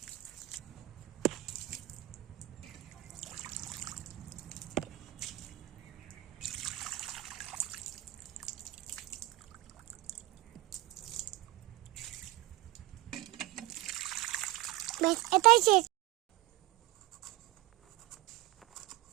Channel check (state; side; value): quieter; left; 18.0 dB